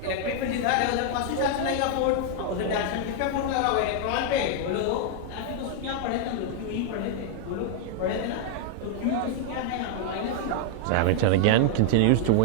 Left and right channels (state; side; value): different; both; correlation 0.00